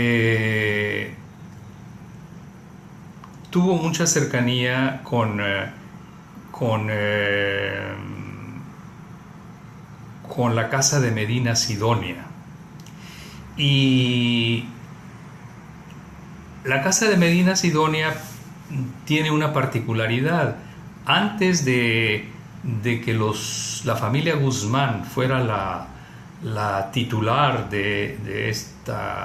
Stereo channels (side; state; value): both; identical; correlation 1.00